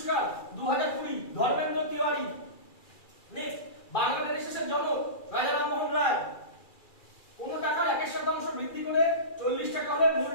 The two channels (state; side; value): late; right; 2.4 ms